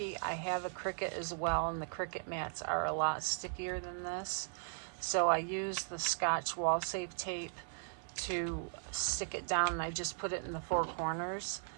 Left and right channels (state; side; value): silent; left; digital silence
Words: I have a Cricut as well, and the Cricut mats are a lot stickier than this. So I use the Scotch Wall Safe tape to stick it down, and I just put it in the four corners.